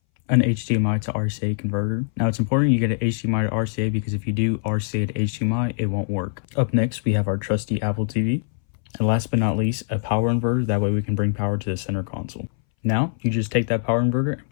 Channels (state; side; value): silent; right; 62 dB below the other